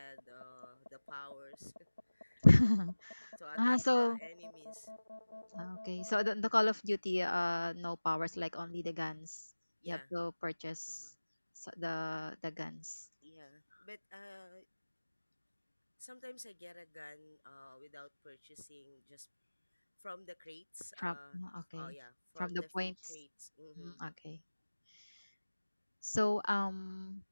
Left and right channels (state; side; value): inverted; both; correlation -1.00